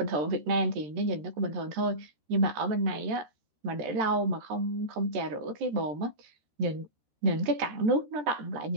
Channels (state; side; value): late; left; 13 ms